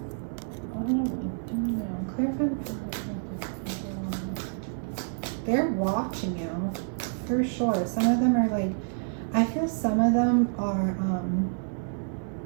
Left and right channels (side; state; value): left; silent; 59 dB below the other